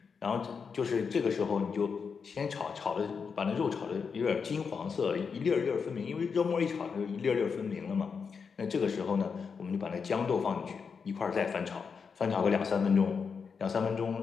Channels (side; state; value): right; quieter; 5.8 dB